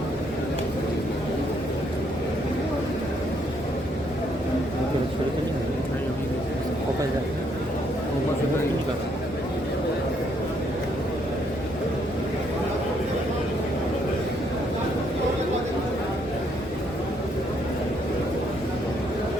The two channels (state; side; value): normal; both; correlation 0.71